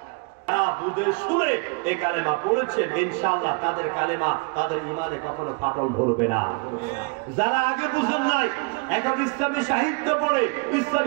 যারা বুঝে শুনে এই কালেমা পড়েছেন ইনশাআল্লাহ তাদের কালেমা তাদের ঈমানে কখনো ফাটল ধরবে না। যারা আগে বুঝেন নাই এখন ইসলামী সাহিত্য পড়ে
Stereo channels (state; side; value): quieter; left; 32.1 dB